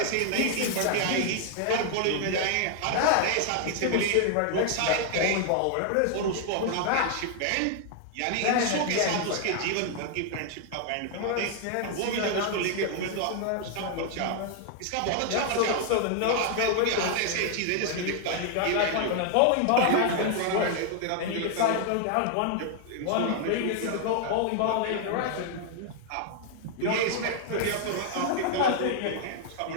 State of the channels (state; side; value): different; both; correlation 0.00